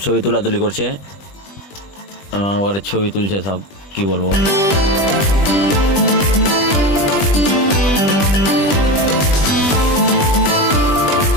ছবি তুলাতুলি করছে, ওর ছবি তুলছে সব, কি বলবো।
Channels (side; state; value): right; late; 20 ms